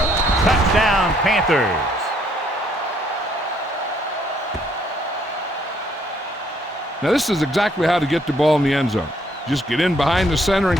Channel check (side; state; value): both; normal; correlation 0.68